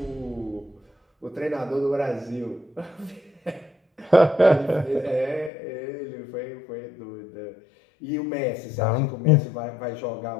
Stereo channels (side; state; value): right; drops out; at 5.5 s